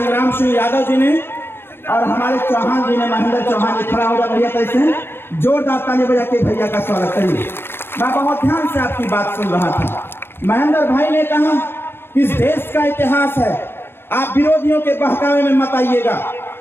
सिंह यादव जी ने और हमारे चौहान जी ने, महेंद्र चौहान जी खड़ा होगा भैया, कैसे जोरदार ताली बजा के भैया का स्वागत करिए। मैं बहुत ध्यान से आपकी बात सुन रहा था। महेंद्र भाई ने कहा कि इस देश का इतिहास है, आप विरोधियों के बहकावे में मत आइएगा।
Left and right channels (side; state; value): right; late; 0.11 ms